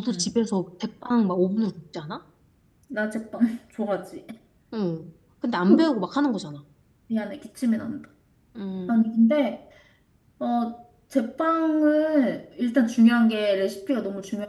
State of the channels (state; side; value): identical; both; correlation 1.00